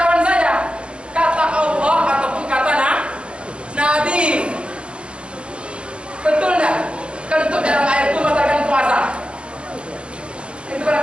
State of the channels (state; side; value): late; left; 0.057 ms